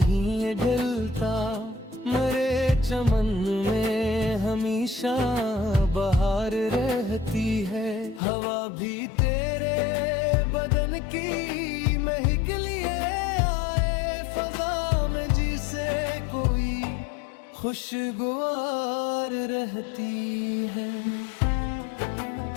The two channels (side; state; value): right; drops out; at 8.2 s